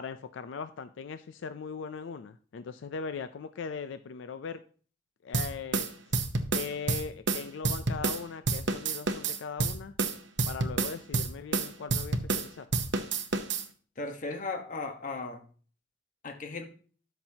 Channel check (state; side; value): normal; both; correlation 0.33